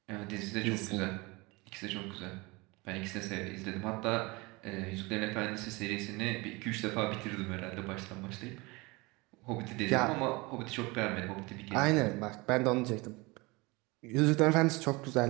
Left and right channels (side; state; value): left; quieter; 24.6 dB